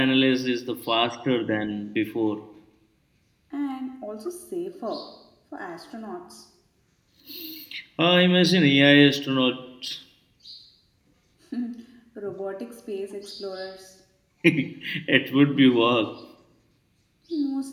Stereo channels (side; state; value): both; identical; correlation 1.00